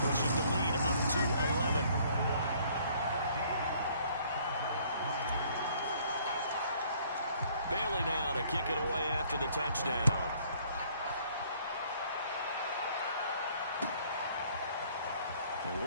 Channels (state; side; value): inverted; both; correlation -0.60